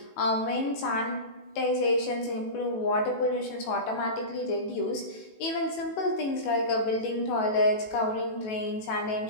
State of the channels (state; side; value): late; right; 18 ms